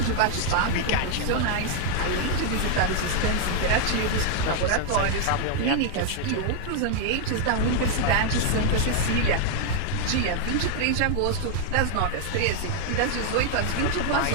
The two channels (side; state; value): both; different; correlation 0.00